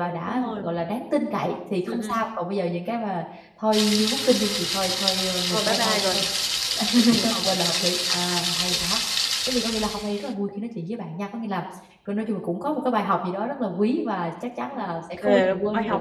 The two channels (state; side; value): identical; both; correlation 1.00